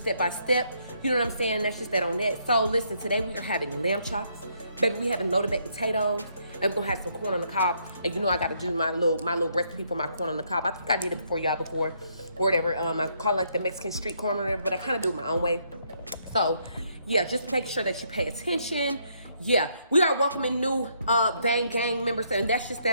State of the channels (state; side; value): inverted; both; correlation -0.72